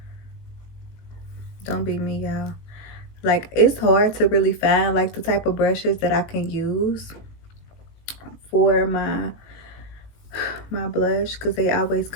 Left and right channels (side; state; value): right; late; 19 ms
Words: Don't be me, y'all. Like, it's hard to really find like the type of brushes that I can use for my blush, because they always